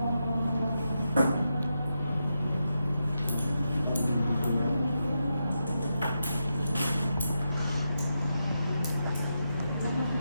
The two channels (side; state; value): both; inverted; correlation -0.86